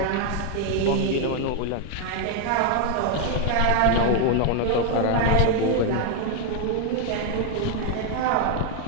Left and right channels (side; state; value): both; different; correlation 0.01